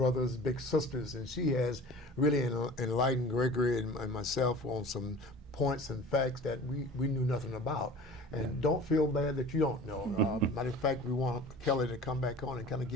Big Sisters, and she has really enlightened Gregory and myself on some points and facts that we knew nothing about. And don't feel bad that you don't know. Matter of fact, we want Kelly to come back on and kind of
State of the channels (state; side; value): normal; both; correlation 0.41